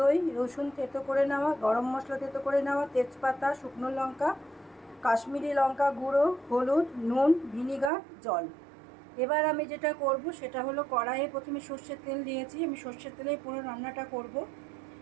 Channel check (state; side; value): drops out; left; at 7.9 s